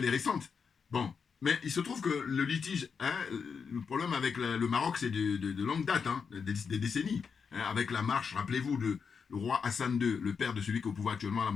est récente. Bon, mais il se trouve que le litige, le problème avec le Maroc, c'est de longue date, hein, des décennies. Hein, avec la marche, rappelez-vous, le roi Hassan II, le père de celui qui est au pouvoir actuellement, la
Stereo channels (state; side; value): quieter; right; 6.0 dB